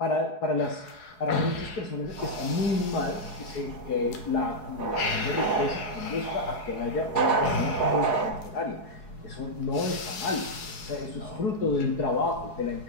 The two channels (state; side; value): late; right; 4.7 ms